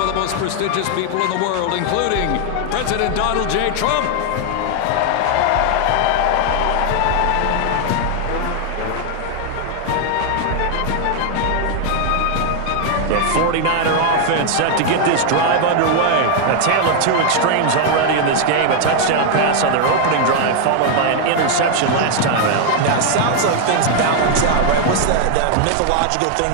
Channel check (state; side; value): different; both; correlation 0.00